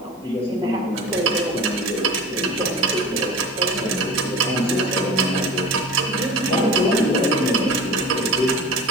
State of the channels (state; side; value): normal; both; correlation 0.36